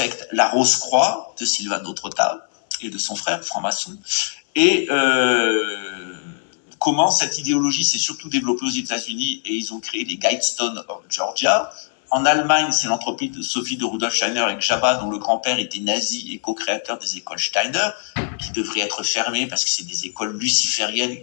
la Rose-Croix de Silvano Trotta et de son frère, franc-maçon. Et comment cette idéologie s'est surtout développée aux États-Unis et ils ont créé les Guidestones of Georgia. En Allemagne, c'est l'anthroposophie de Rudolf Steiner avec Jabba, dont le grand-père était nazi et co-créateur des écoles Steiner, qui devraient être fermées parce que c'est des écoles lucifériennes,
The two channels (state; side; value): silent; right; digital silence